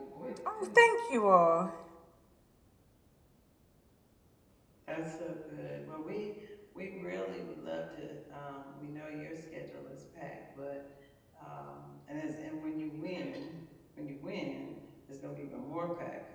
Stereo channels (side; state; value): both; identical; correlation 1.00